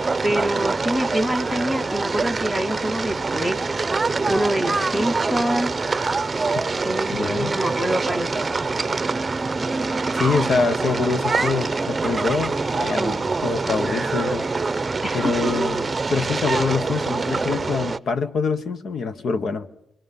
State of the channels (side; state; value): both; normal; correlation 0.87